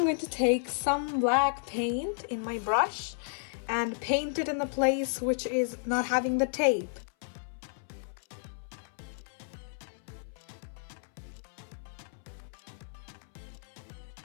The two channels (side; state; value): right; silent; 56 dB below the other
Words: to take some black paint in my brush and paint it in the place which is not having the tape.